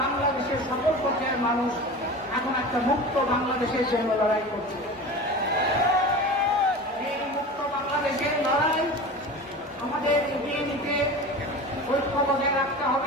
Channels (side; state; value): both; normal; correlation 0.33